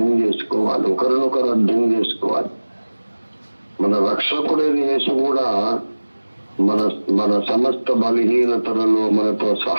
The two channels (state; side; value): inverted; both; correlation -1.00